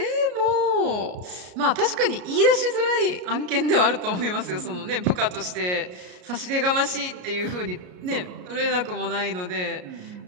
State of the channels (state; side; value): late; left; 33 ms